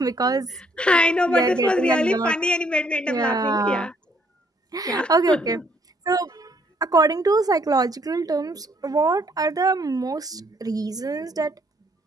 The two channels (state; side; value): normal; both; correlation 0.67